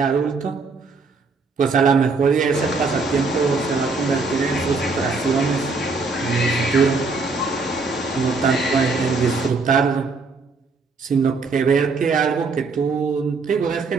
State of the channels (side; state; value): left; quieter; 4.2 dB